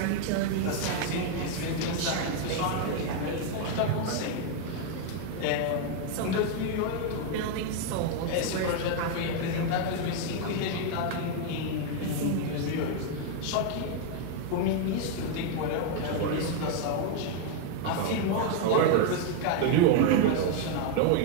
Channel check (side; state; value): both; different; correlation 0.00